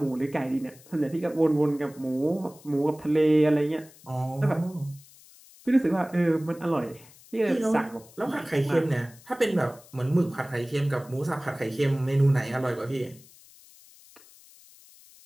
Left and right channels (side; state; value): left; noise; hiss, 24 dB below the sound